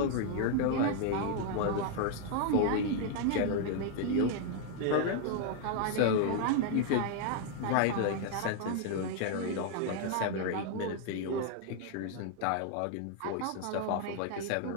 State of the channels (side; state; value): both; different; correlation 0.00